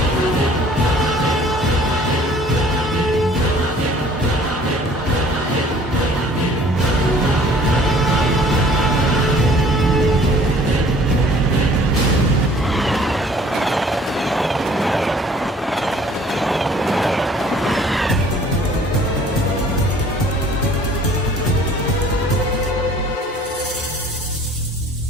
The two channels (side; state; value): both; normal; correlation 0.53